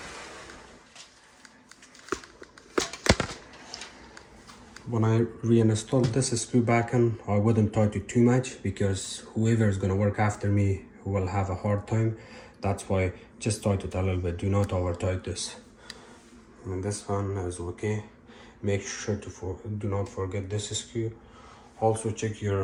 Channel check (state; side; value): identical; both; correlation 1.00